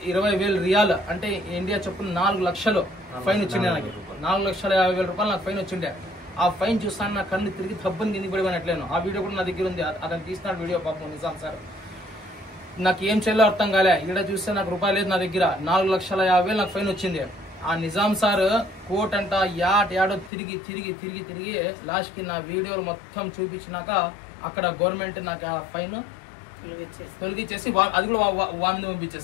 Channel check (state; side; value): drops out; right; at 20.3 s